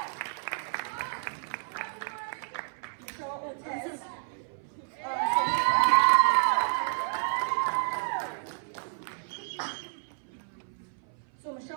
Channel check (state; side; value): silent; left; 57 dB below the other